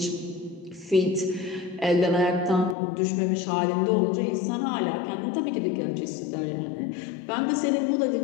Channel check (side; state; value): right; drops out; at 2.8 s